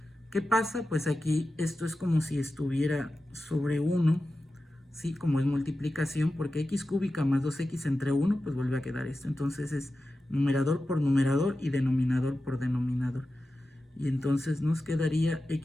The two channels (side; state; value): both; normal; correlation 0.93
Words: ¿Qué pasa? Pues aquí esto es como si estuviera sobre 1, ¿sí? Como es multiplicación, porque x cúbica más 2x entre 1, pues vuelve a quedar esto. Entonces es numerador por numerador y denominador por denominador. Y entonces nos quedaría